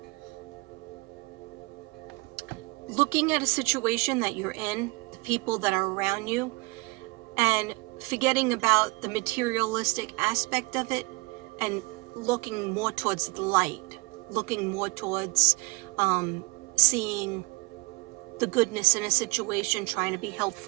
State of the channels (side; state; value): left; quieter; 25.4 dB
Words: looking at a situation that you're in, the people that are around you, and forgetting about the materialistic aspect of it, and looking more towards the light, looking more towards seeing the goodness in a situation, trying to be